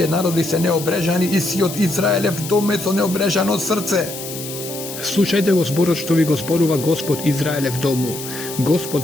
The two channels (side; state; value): left; noise; hiss, 10 dB below the sound